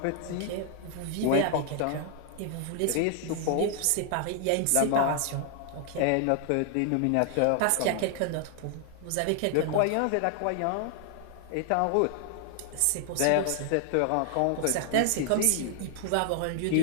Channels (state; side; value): different; both; correlation 0.00